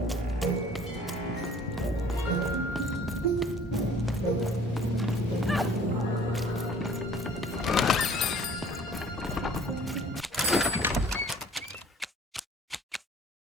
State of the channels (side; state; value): both; normal; correlation 0.51